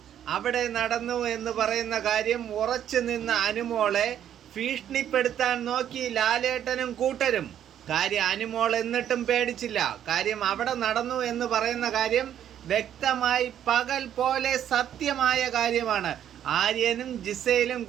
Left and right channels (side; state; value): left; quieter; 10.2 dB